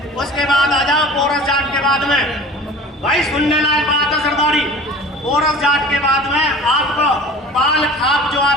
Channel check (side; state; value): both; normal; correlation 0.42